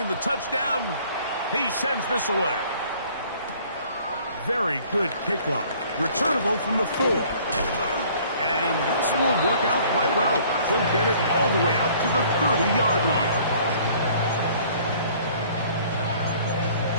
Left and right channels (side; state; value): both; inverted; correlation -0.55